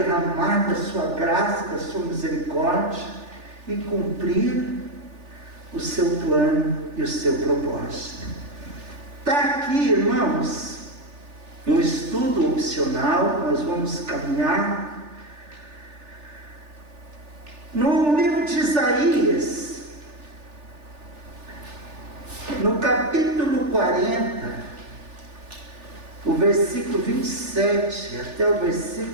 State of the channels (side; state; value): left; late; 3.4 ms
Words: da sua graça, da sua misericórdia, e cumprir o seu plano e o seu propósito. Está aqui, irmãos, um estudo opcional. Nós vamos caminhar no livro de Isaías, no capítulo 40, o versículo 27 até o